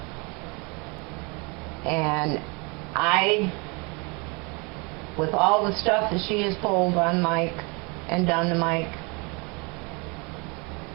And with all the stuff that she has pulled on Mike and done to Mike,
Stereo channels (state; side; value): quieter; left; 30.1 dB